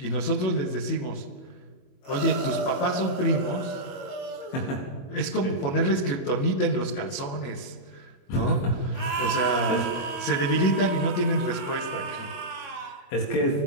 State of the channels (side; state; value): right; late; 22 ms